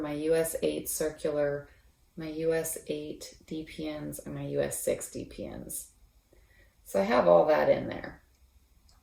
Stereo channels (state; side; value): identical; both; correlation 1.00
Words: my US 8 circular, my US 8 DPNs, and my US 6 DPNs. So I have all that in there.